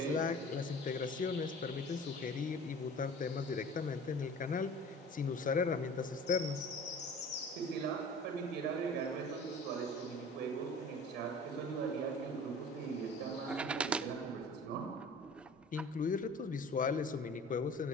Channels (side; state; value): both; normal; correlation 0.43